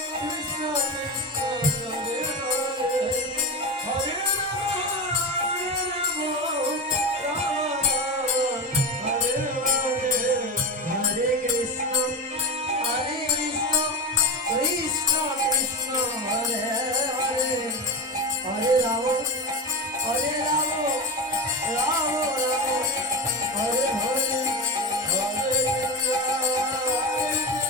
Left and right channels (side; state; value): both; normal; correlation 0.21